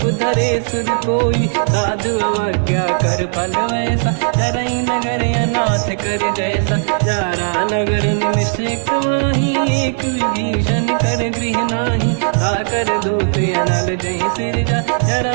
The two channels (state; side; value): silent; left; digital silence